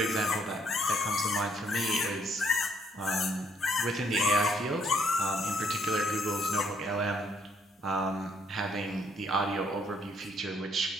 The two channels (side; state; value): both; normal; correlation 0.69